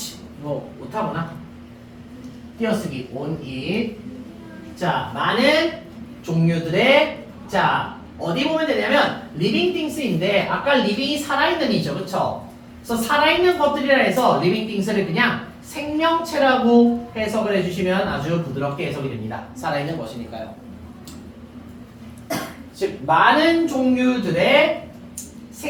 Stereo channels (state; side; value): identical; both; correlation 1.00